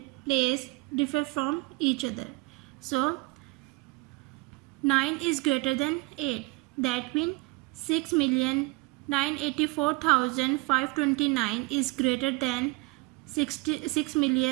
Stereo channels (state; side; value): quieter; left; 25.0 dB